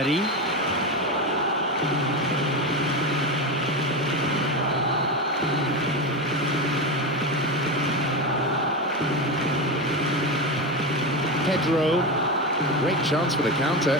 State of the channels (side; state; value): both; normal; correlation 0.17